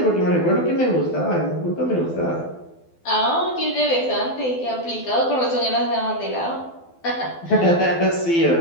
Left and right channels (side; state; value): right; late; 12 ms